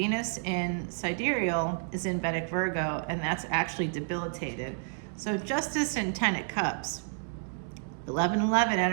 in sidereal is in Vedic Virgo, and that's actually debilitated. So Justice and 10 of Cups. 11/11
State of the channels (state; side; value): silent; left; 58 dB below the other